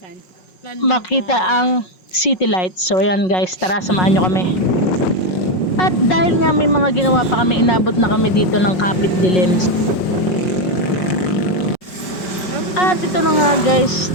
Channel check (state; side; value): late; right; 5.4 ms